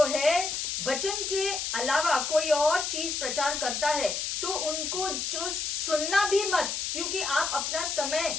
है वचन के अलावा कोई और चीज प्रचार करता है तो उनको जो सुनना भी मत, क्योंकि आप अपना समय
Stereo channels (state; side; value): noise; left; hiss, 2 dB below the sound